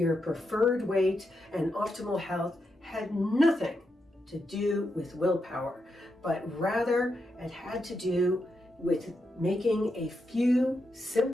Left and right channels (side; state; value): both; normal; correlation 0.84